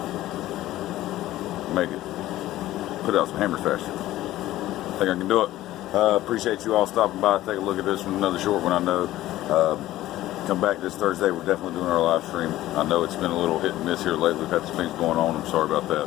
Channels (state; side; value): quieter; right; 15.2 dB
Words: make it, put out some hammers faster. I think I can do it. Appreciate you all stopping by. Take a look at this one, another short one I know. Come back this Thursday. We're definitely doing our live stream. I know it's been a little hit and miss here lately. We've had some things going on. I'm sorry about